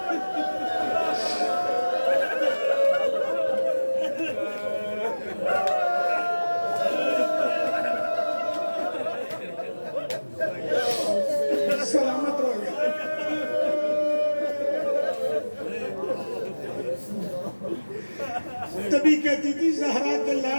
سلامت رہو گیا. تبھی کہتی تھی زہرا کے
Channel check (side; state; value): both; inverted; correlation -1.00